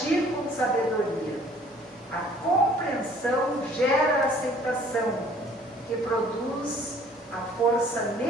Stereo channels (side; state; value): both; normal; correlation 0.55